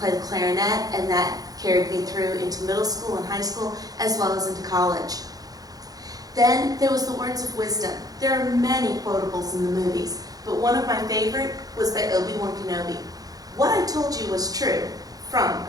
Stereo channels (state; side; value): late; left; 0.18 ms